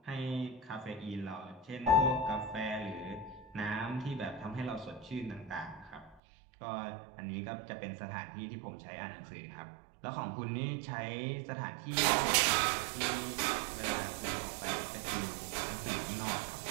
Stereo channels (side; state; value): left; drops out; at 6.2 s